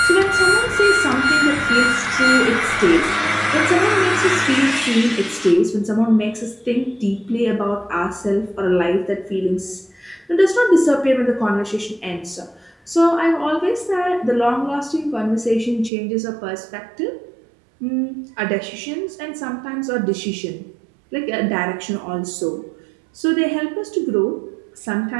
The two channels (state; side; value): drops out; left; at 15.9 s